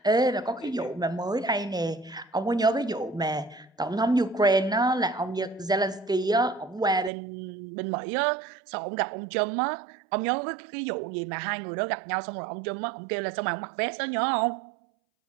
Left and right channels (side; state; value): left; drops out; at 7.1 s